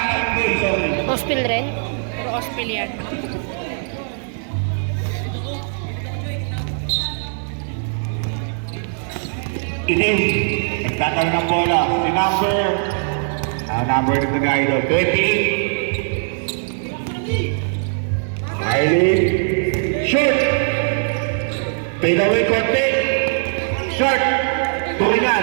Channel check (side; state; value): left; silent; 61 dB below the other